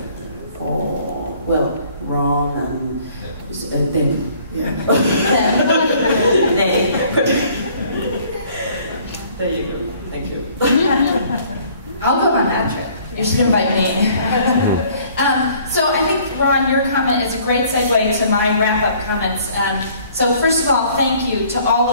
Ron and them. Yeah. There you go. Thank you. I'll go on that trip. You should invite me. So I think, Ron, your comment is a great segue to my wrap-up comments. So first of all, thank you to all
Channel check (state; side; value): inverted; both; correlation -0.58